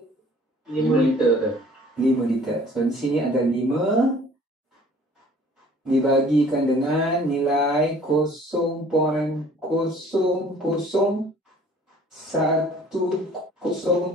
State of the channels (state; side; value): normal; both; correlation 0.52